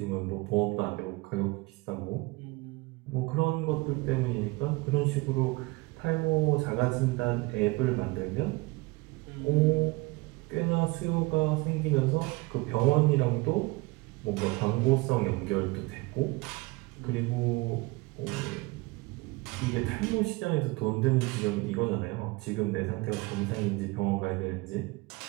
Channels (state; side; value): quieter; left; 23.7 dB